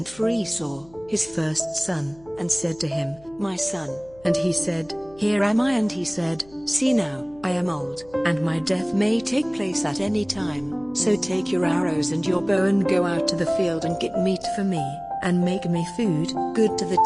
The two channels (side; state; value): left; noise; hum, 25 dB below the sound